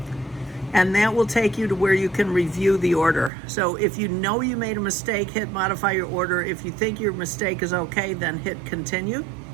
and that will take you to where you can review the order. So if you know you made a mistake, hit modify your order. If you think your mistake is okay, then hit continue.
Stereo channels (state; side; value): drops out; left; at 3.3 s